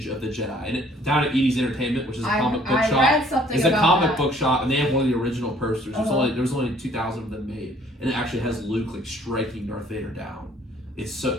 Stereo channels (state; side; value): normal; both; correlation 0.59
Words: of the Jedi, and down at Edie's Entertainment, which is a comic book shop. I read something It's a about comic that. book shop, and they have one of the original posters. Uh-huh. There was only 2,000 of them made, and it actually has Luke like striking Darth Vader down. It's so